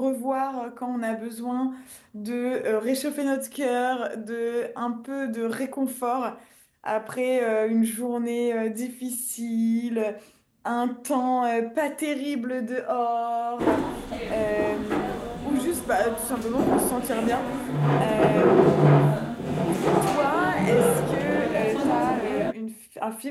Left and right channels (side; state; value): both; identical; correlation 1.00